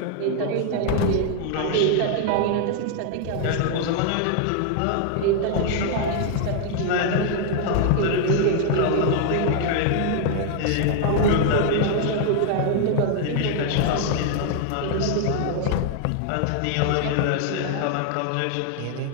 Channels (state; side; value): different; both; correlation 0.00